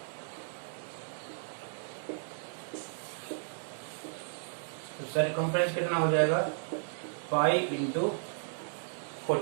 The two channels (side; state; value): left; silent; digital silence